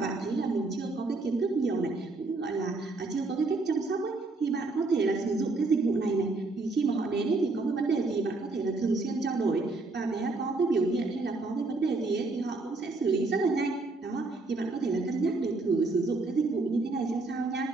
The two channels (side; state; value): left; quieter; 3.4 dB